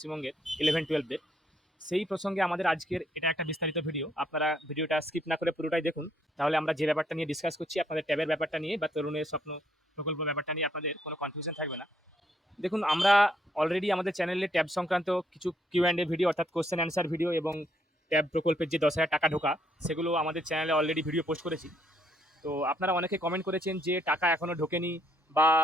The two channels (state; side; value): normal; both; correlation 0.71